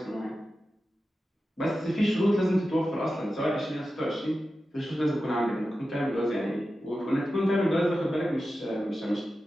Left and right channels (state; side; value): normal; both; correlation 0.92